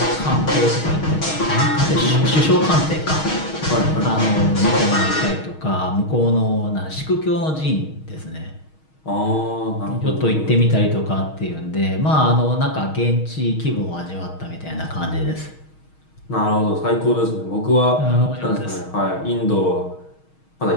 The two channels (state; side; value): late; right; 6.4 ms